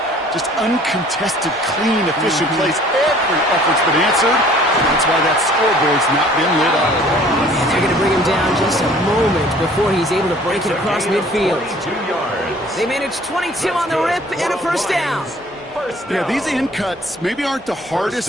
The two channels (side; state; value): both; normal; correlation 0.53